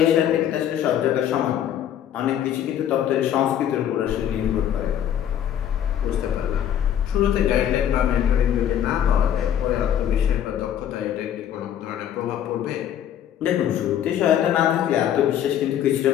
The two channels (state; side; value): quieter; right; 10.2 dB